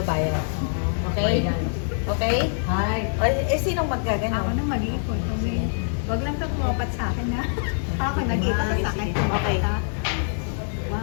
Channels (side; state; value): right; silent; digital silence